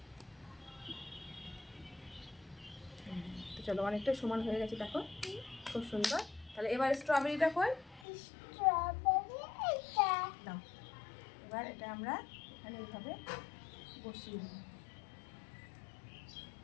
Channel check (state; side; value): drops out; right; at 8.1 s